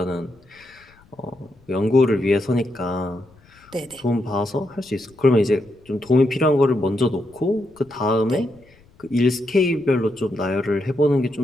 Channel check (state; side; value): noise; left; rumble, 29 dB below the sound